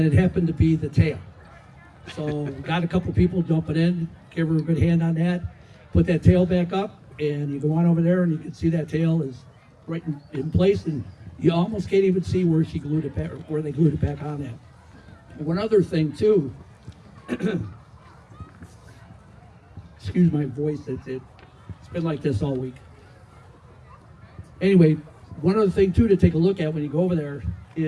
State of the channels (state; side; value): identical; both; correlation 1.00